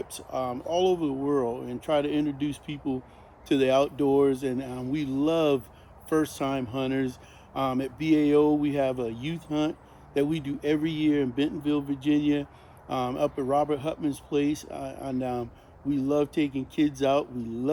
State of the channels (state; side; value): identical; both; correlation 1.00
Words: all over the world and try to introduce people to the outdoors. And we love first-time hunters. At BAO, we have a youth hunt that we do every year in Bentonville, Virginia, up at Robert Hutman's place, and we love taking kids out. We